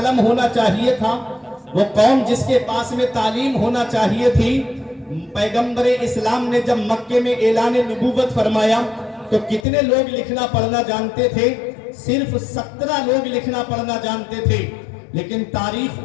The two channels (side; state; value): right; drops out; at 9.7 s